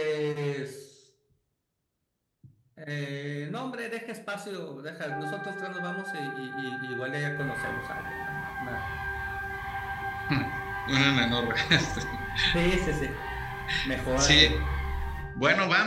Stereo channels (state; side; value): identical; both; correlation 1.00